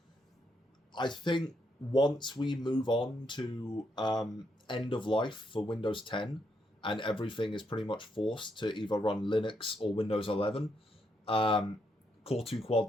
I think once we move on to end of life for Windows 10 and everything is pretty much forced to either run Linux or Windows 11,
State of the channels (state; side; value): normal; both; correlation 0.77